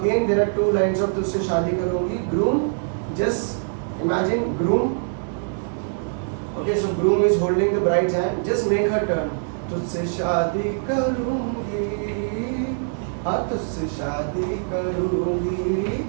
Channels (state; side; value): silent; left; digital silence